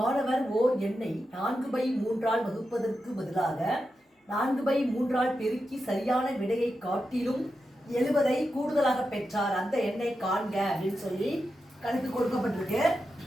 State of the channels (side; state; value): both; normal; correlation 0.89